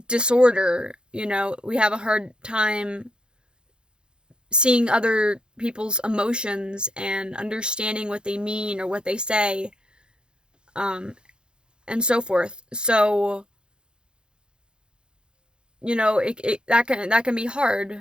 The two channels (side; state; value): left; late; 0.049 ms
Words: disorder. We have a hard time seeing other people's emotions and understanding what they mean or what they say, um, and so forth. So, that can be